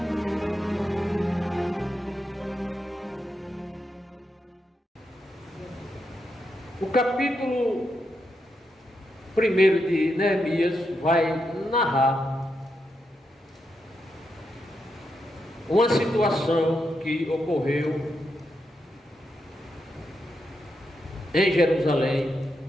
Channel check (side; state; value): both; normal; correlation 0.84